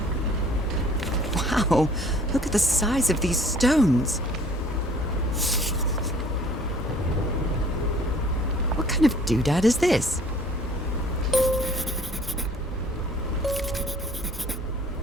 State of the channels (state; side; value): normal; both; correlation 0.54